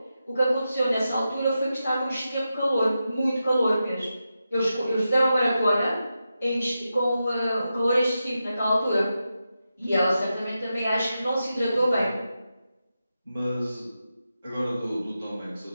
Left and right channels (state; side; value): inverted; both; correlation -0.89